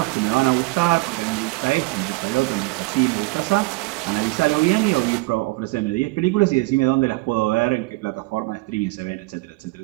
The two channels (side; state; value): left; quieter; 23.4 dB